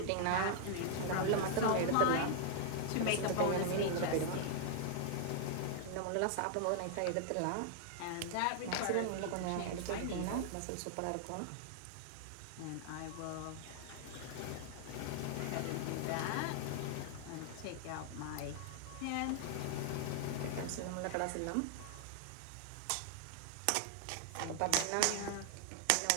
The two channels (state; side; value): different; both; correlation -0.01